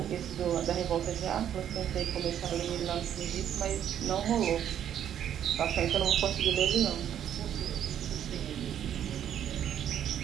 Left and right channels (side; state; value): left; quieter; 10.0 dB